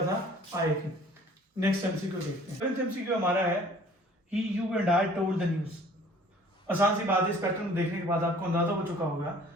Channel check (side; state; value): both; normal; correlation 0.52